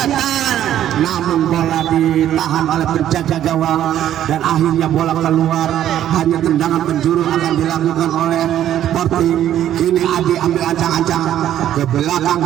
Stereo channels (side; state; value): left; quieter; 11.4 dB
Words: namun bola ditahan oleh penjaga gawang dan akhirnya bola keluar, hanya tendangan penjuru akan dilakukan oleh Sporting. Kini Adi ambil ancang-ancang ke belakang